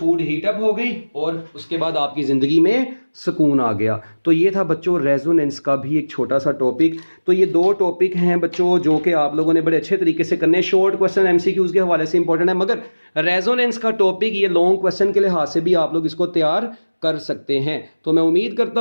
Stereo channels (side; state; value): both; inverted; correlation -1.00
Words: हीट अप हो गई और उसके बाद आपकी ज़िंदगी में सुकून आ गया। तो ये था बच्चों रेजोनेंस का भी एक छोटा सा टॉपिक। तो ये दो टॉपिक हैं बच्चों जो कि आप लोगों ने बड़े अच्छे तरीके से करने हैं। शॉर्ट क्वेश्चन एमसीक्यूज के हवाले से इंपॉर्टेंट है, मगर रेजोनेंस का टॉपिक ये लॉन्ग क्वेश्चन के लिहाज से भी आप लोग इसको तैयार कर सकते हैं। तो मैं उम्मीद